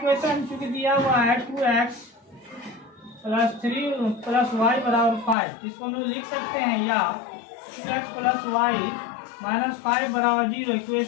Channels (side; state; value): right; drops out; at 5.4 s